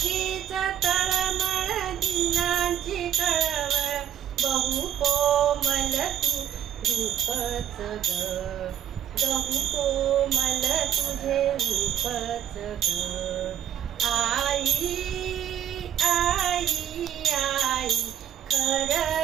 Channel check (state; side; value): quieter; left; 10.3 dB